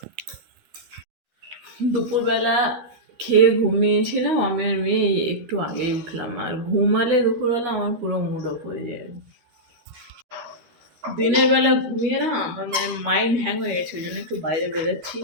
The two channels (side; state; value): left; late; 12 ms